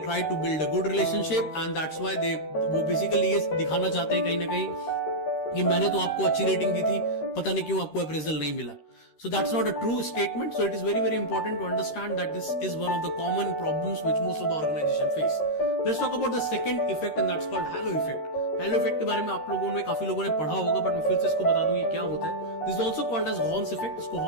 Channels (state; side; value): late; right; 13 ms